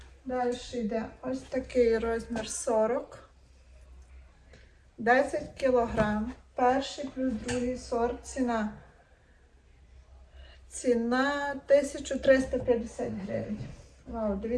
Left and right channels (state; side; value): identical; both; correlation 1.00